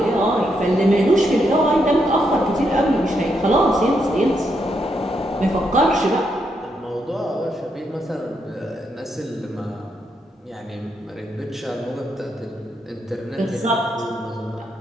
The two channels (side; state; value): both; normal; correlation 0.79